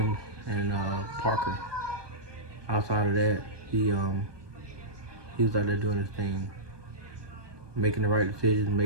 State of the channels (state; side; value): late; left; 1.2 ms